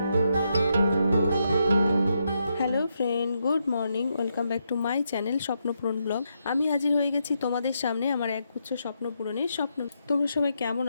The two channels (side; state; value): both; inverted; correlation -0.81